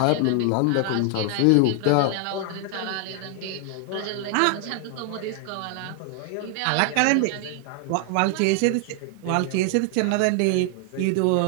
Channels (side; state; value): both; different; correlation 0.00